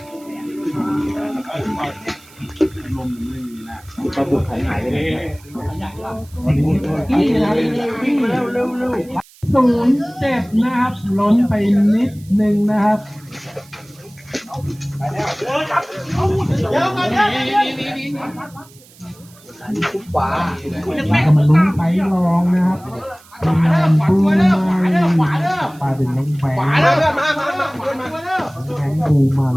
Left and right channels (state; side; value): noise; right; hiss, 25 dB below the sound